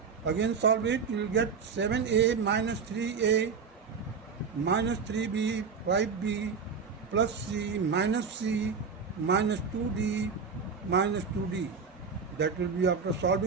Again solve it, you will get 7a minus 3a minus 3b 5b plus c minus 2d minus 2d. That will be, after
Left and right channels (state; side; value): quieter; left; 5.6 dB